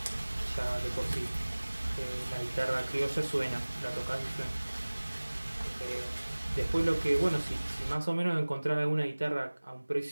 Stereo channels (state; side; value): inverted; both; correlation -1.00